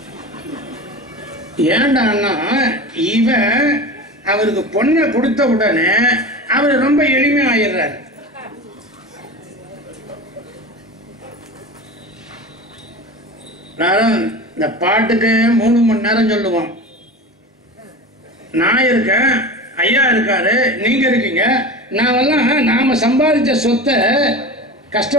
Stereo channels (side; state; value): both; normal; correlation 0.30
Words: ஏண்டான்னா இவன் அவருக்கு பொண்ணை கொடுத்த உடனே அவர் ரொம்ப எளிமை ஆயிடுறாரு. நான் இந்த பாட்டுக்கு 3 மணி நேரம் சொல்லுவோம். நான் இருக்கேன், ஐயா இருக்காரு, நீங்க இருக்கீங்க. நாமெல்லாம் நாம சம்பாதிச்ச சொத்தை